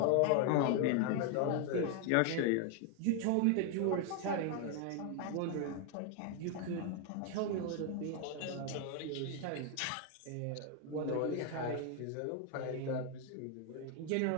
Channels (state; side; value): different; both; correlation 0.00